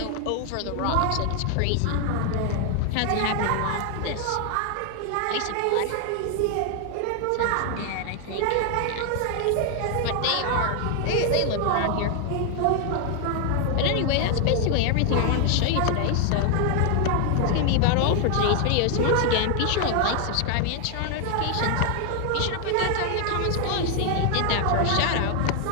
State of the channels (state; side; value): different; both; correlation 0.01